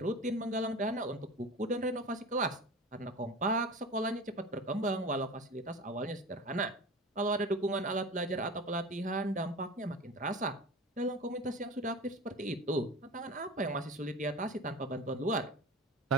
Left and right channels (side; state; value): both; normal; correlation 0.33